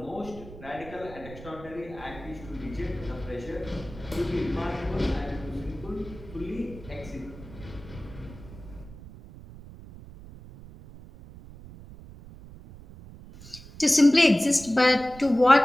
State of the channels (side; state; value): right; noise; rumble, 17 dB below the sound